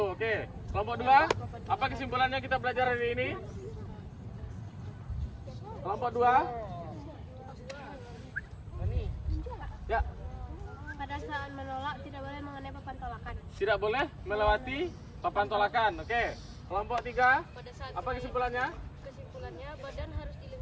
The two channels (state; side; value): identical; both; correlation 1.00